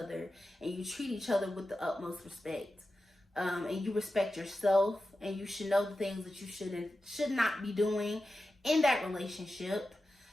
and you treat each other with the utmost respect. And you respect yourself, and you should know the things that you should not be doing in that relationship.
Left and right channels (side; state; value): both; normal; correlation 0.92